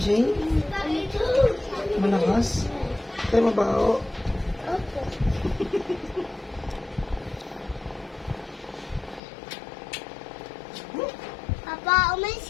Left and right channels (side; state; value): right; drops out; at 9.2 s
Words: Malakas? Kaya mabaho. Opo. Papa, umalis